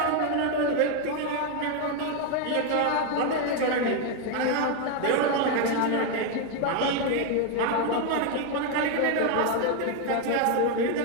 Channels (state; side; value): different; both; correlation 0.01